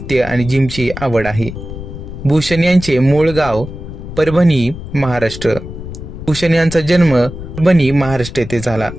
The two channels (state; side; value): noise; left; rumble, 11 dB below the sound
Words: आणि जिमची आवड आहे. भूषण यांचे मूळ गाव परभणी, महाराष्ट्र. भूषण यांचा जन्म परभणी, महाराष्ट्र येथे झाला,